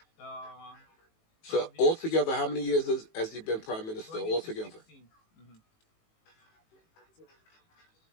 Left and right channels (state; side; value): late; right; 18 ms